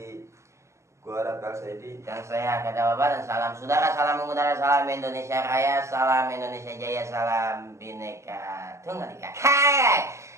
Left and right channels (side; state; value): left; late; 0.14 ms